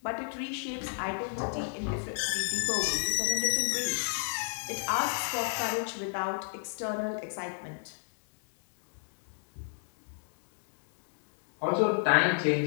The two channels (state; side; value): silent; right; digital silence